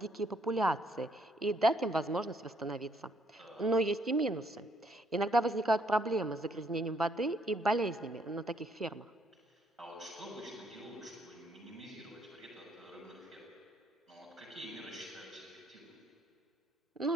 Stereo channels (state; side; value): normal; both; correlation 0.70